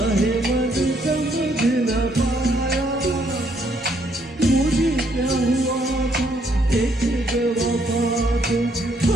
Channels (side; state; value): both; normal; correlation 0.70